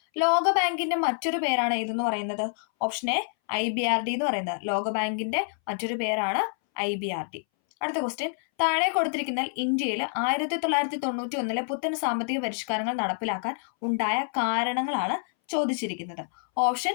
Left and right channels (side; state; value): right; silent; 60 dB below the other